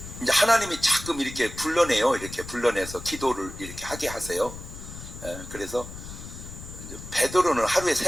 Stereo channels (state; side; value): noise; left; rumble, 12 dB below the sound